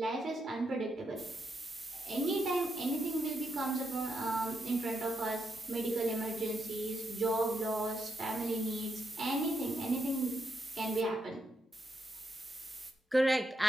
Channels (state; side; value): normal; both; correlation 0.82